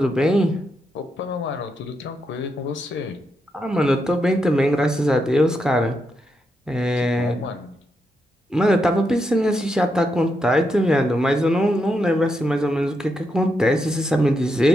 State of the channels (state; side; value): normal; both; correlation 0.83